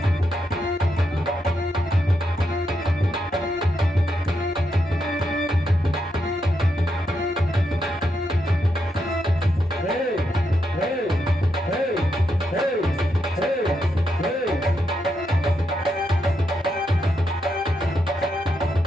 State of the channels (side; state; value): both; normal; correlation 0.82